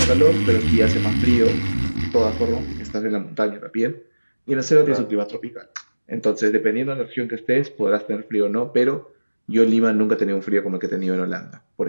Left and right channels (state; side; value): inverted; both; correlation -1.00